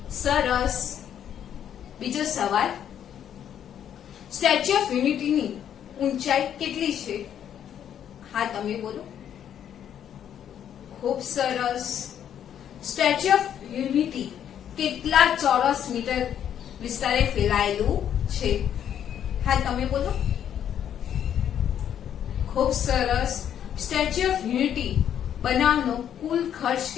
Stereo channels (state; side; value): quieter; right; 9.6 dB